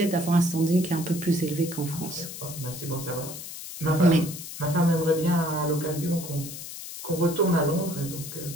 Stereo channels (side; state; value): left; noise; hiss, 10 dB below the sound